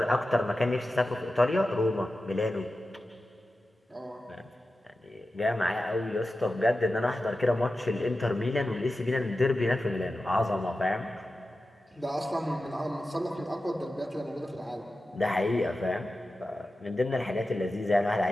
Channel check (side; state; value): both; normal; correlation 0.93